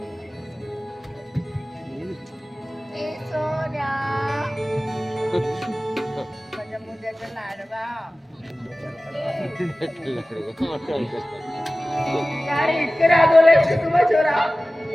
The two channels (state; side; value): normal; both; correlation 0.97